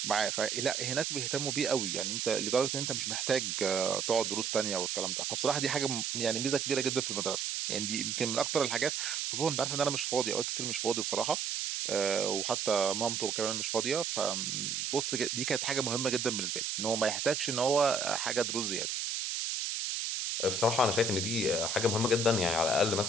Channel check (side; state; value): right; noise; hiss, 1 dB below the sound